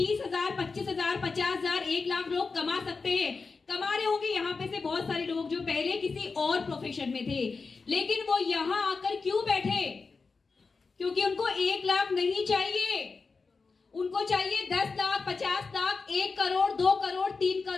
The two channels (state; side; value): quieter; right; 4.5 dB